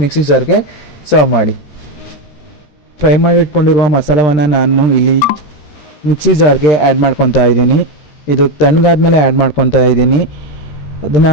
ಮಿಕ್ಸಿ ಜಾರ್ಗೆ ಸರ್ವ್ ಮಾಡಿ. ಫ್ರೈ ಮಾಡಿಟ್ಕೊಂಡಿರುವ ಮಸಾಲವನ್ನು ನಾನು ಇಲ್ಲಿ ಮಿಕ್ಸಿ ಜಾರ್ಗೆ ಆ್ಯಡ್ ಮಾಡ್ಕೊತಾ ಇದ್ದೀನಿ. ಇದು ತಣ್ಣಗಾದ್ಮೇಲೆ ಆ್ಯಡ್ ಮಾಡ್ಕೊತಾ ಇದ್ದೀನಿ. ಅದನ್ನು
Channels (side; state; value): right; late; 13 ms